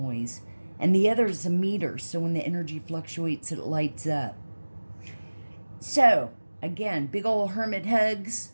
And the other is a meter, so when the energy fluctuates, it lights up. So, again, big old hermit hugs.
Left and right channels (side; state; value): both; inverted; correlation -1.00